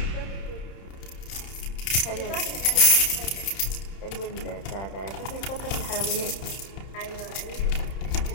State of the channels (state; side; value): late; right; 31 ms